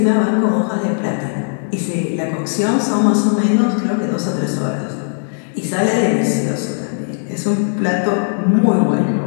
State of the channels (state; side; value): silent; right; digital silence